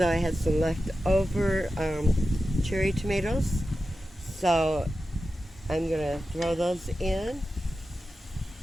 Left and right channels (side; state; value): both; normal; correlation 0.92